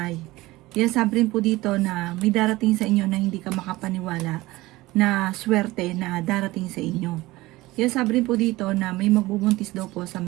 Yan sabi rin po dito na may darating sa inyo na hindi ka makapaniwala na swerte na darating sa inyo. Yan sabi rin po dito na may magbubuntis daw po sa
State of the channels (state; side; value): quieter; left; 19.2 dB